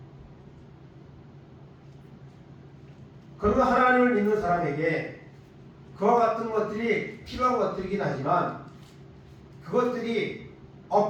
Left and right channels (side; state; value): both; identical; correlation 1.00